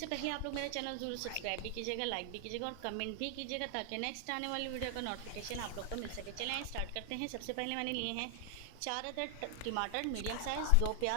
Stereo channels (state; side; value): different; both; correlation 0.00